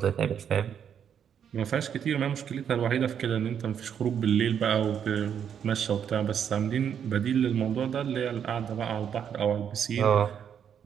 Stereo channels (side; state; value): left; quieter; 8.3 dB